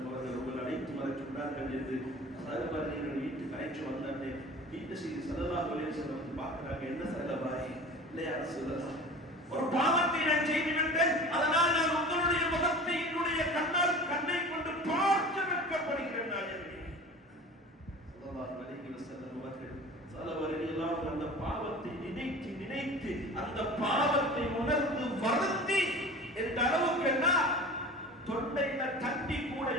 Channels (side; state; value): both; normal; correlation 0.38